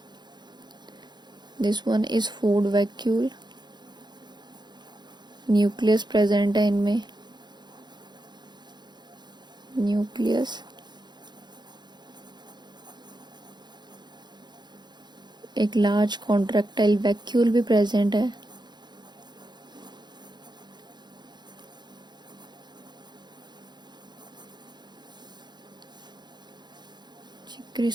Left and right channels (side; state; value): left; late; 0.21 ms